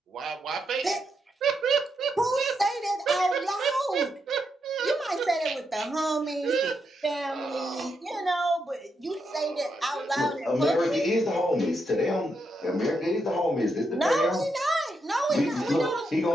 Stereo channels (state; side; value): normal; both; correlation 0.82